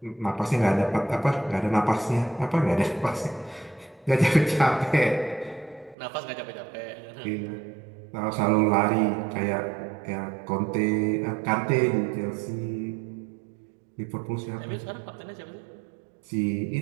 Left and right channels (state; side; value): drops out; left; at 6.0 s